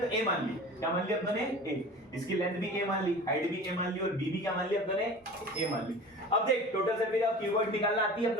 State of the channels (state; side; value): normal; both; correlation 0.38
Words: तो ए मान ली, क्या मान ली अपने ए, इसकी लेंथ भी ए मान ली, हाइट भी ए मान ली और बी भी क्या मान ली अपने ए मान ली। अब देख total surface area of cuboid निकालना आती है